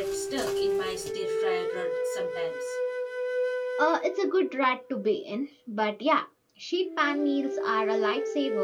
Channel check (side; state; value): both; identical; correlation 1.00